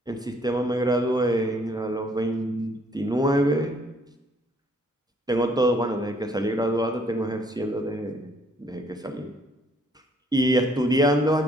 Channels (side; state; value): both; normal; correlation 0.64